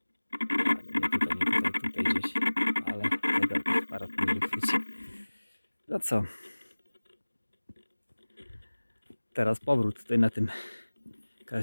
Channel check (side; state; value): both; inverted; correlation -1.00